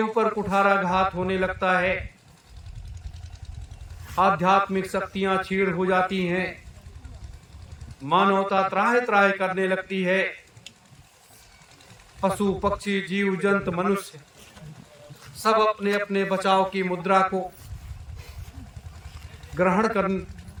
ऊपर कुठाराघात होने लगता है, आध्यात्मिक शक्तियां छीड़ हो जाती हैं, मानवता त्राहि त्राहि करने लगती है, पशु पक्षी जीव जंतु मनुष्य सब अपने अपने बचाव की मुद्रा को ग्रहण कर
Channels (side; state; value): both; identical; correlation 1.00